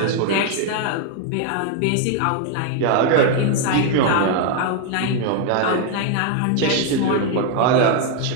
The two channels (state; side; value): different; both; correlation 0.00